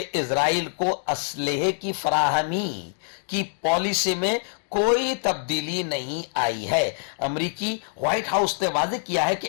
اسرائیل کو اسلحے کی فراہمی کی پالیسی میں کوئی تبدیلی نہیں آئی ہے. امریکی وائٹ ہاؤس نے واضح کیا ہے کہ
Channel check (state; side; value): silent; right; digital silence